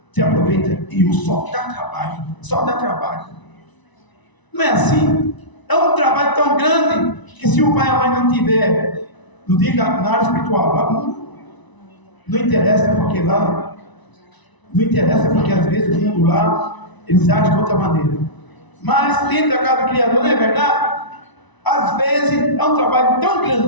Você aproveita e o só dá trabalho. Só dá trabalho. Não é assim? É um trabalho tão grande que se o pai e a mãe não tiver, não diga na área espiritual, lá não interessa porque lá, não interessa porque às vezes o mundo lá, eles agem de outra maneira. Mas dentro da casa do Criador, não é verdade? Às vezes é um trabalho tão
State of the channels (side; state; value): right; late; 1.0 ms